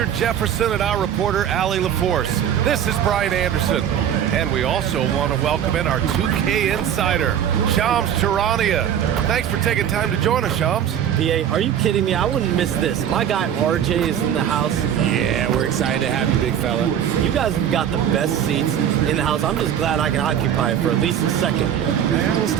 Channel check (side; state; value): left; quieter; 9.6 dB